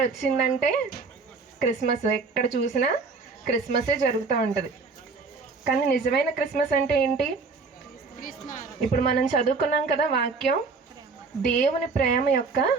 వచ్చిందంటే క్రిస్మస్, ఎక్కడ చూసినా క్రిస్మసే జరుగుతూ ఉంటుంది. కానీ నిజమైన క్రిస్మస్ అంటే ఏంటి? ఇప్పుడు మనం చదువుకున్నాం కదా వాక్యం, దేవుని ప్రేమ యొక్క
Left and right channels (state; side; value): quieter; left; 4.4 dB